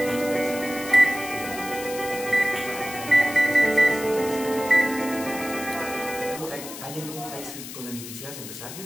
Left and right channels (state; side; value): noise; left; hiss, 11 dB below the sound